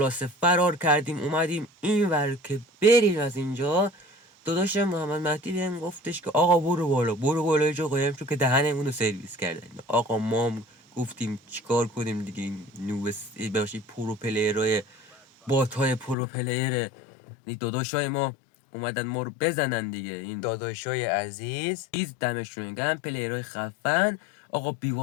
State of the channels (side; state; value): right; drops out; at 16.2 s